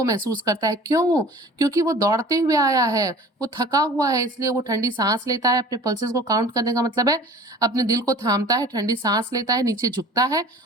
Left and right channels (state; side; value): normal; both; correlation 0.44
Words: महसूस करता है। क्यों? क्योंकि वो दौड़ते हुए आया है, वो थका हुआ है, इसलिए वो ठंडी सांस लेता है। अपने पल्सेस को काउंट करने का मतलब है अपने दिल को थामता है, ठंडी सांस लेता है, नीचे झुकता है